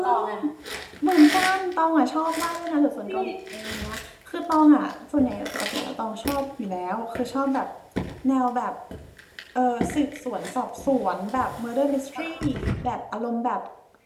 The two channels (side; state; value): both; identical; correlation 1.00